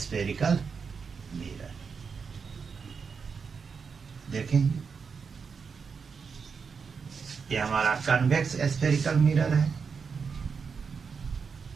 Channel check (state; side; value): quieter; left; 5.7 dB